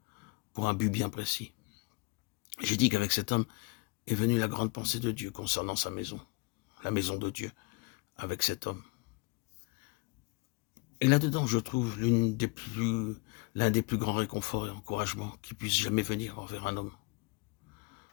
pour un but bien précis. J'ai dit qu'avec cet homme est venue la grande pensée de Dieu concernant sa maison, la maison de Dieu, avec cet homme. Et là-dedans, je trouve l'un des plus grands réconforts et encouragements qui puissent jamais venir envers un homme.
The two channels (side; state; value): right; quieter; 26.9 dB